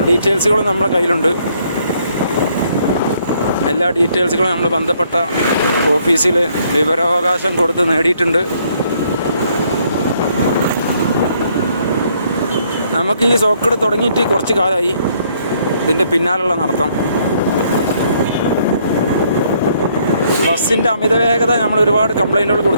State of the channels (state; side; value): inverted; both; correlation -0.67